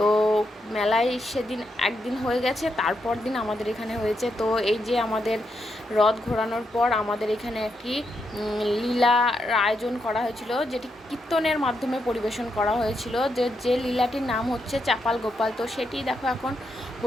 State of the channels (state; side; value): normal; both; correlation 0.82